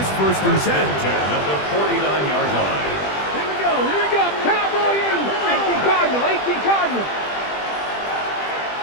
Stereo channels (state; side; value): late; right; 20 ms